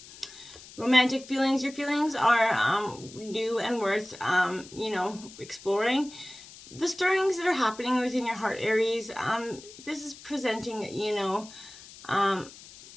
Romantic feelings. Your feelings are new and worth, you know, exploring. The stirrings that are happening within your heart, Aries, this is presenting, you know, an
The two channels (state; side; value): noise; left; hiss, 18 dB below the sound